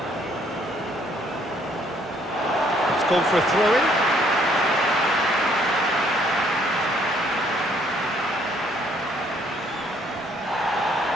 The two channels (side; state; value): both; normal; correlation 0.65